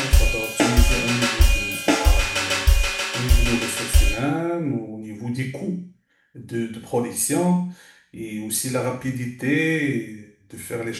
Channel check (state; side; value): identical; both; correlation 1.00